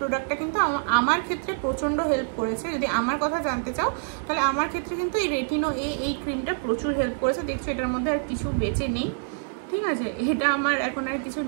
কিন্তু আমার ক্ষেত্রে প্রচণ্ড হেল্প করেছে। যদি আমার কথা জানতে চাও তাহলে আমার ক্ষেত্রে কিন্তু এই রেটিনো এই ক্রিমটা প্রচুর হেল্প করেছে। দেখছো এটার মধ্যে আর কিছু বেঁচে নেই, ঠিক আছে, এটা আমার এখন আর কিছু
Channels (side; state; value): left; silent; digital silence